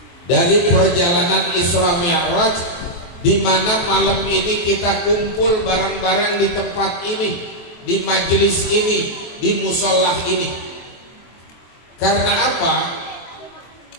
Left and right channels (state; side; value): late; right; 23 ms